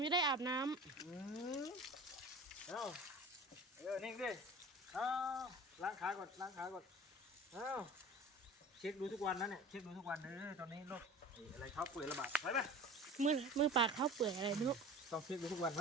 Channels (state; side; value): normal; both; correlation 0.39